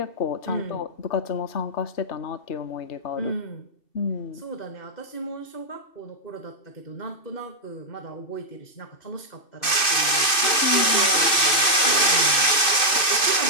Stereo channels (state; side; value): late; right; 2.5 ms